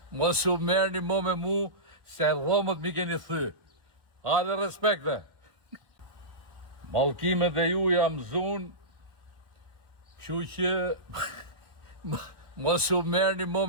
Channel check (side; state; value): left; late; 1.4 ms